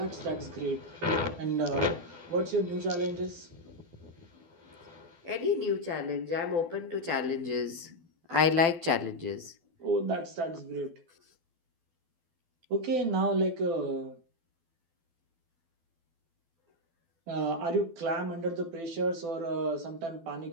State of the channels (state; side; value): late; left; 12 ms